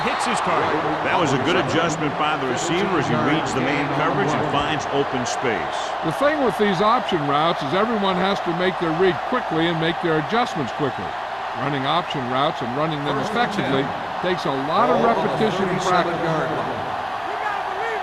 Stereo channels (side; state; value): both; identical; correlation 1.00